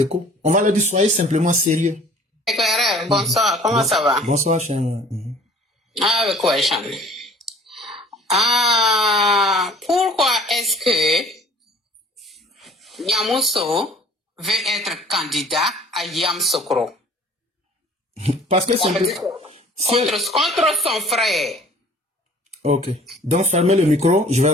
on va leur dire, soyez simplement sérieux. Éclaireur, bonsoir, comment ça va? Bonsoir, cher. Ah, avec quoi, Cham? Ah, pourquoi est-ce que Yamoussoukro veut être candidat à Yamoussoukro? Parce que c'est contre son frère. Ok. Donc, fermez le micro, je vais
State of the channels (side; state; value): both; normal; correlation 0.51